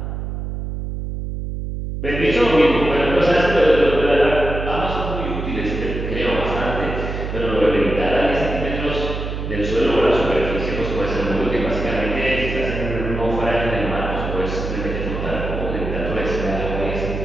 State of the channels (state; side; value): noise; right; hum, 5 dB below the sound